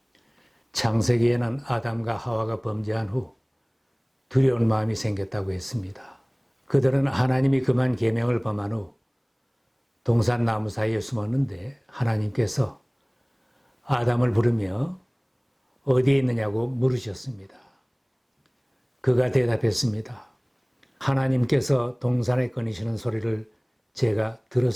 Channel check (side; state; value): both; identical; correlation 1.00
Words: 창세기에는 아담과 하와가 범죄한 후 두려운 마음이 생겼다고 했습니다. 그들은 하나님이 그만 계명을 범한 후 동산나무 사이에 숨었는데 하나님께서 아담을 부르며 어디에 있느냐고 물으셨습니다. 그가 대답했습니다. 하나님께서 동산에 꺼내시는 소리를 제가